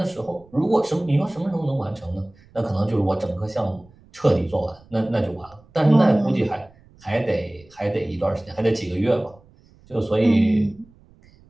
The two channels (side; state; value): right; noise; rumble, 28 dB below the sound